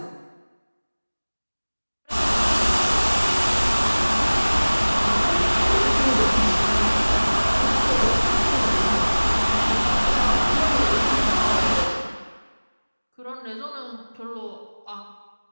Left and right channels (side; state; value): both; inverted; correlation -1.00